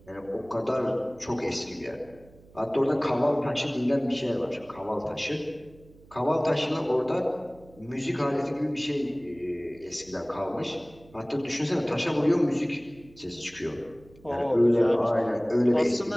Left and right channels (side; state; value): right; noise; hum, 25 dB below the sound